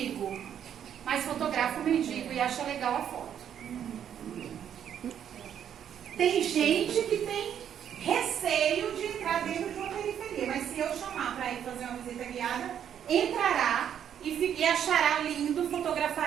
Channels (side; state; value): left; quieter; 9.2 dB